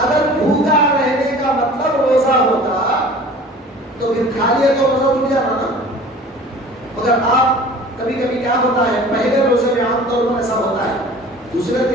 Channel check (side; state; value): both; normal; correlation 0.44